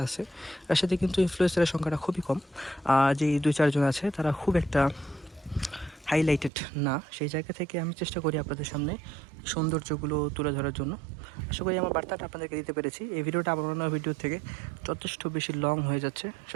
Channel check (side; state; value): left; drops out; at 6.5 s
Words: আছে, তার সাথে কিন্তু ইনফ্লুয়েন্সারের সংখ্যাটা খুবই কম। যে 2-4 জন আছে, তারা খুব একটা হাইলাইটেড না। সেই জায়গা থেকে আমি চেষ্টা করি আপনাদের সামনে সৌন্দর্যগুলো তুলে ধরার জন্য। আশা করি আমার বার্তাটা আপনাদেরকে দিতে পেরেছি। এই ভিডিওটা আমার অন্য ভিডিও থেকে যথেষ্ট বেশি লং হয়ে যাচ্ছে।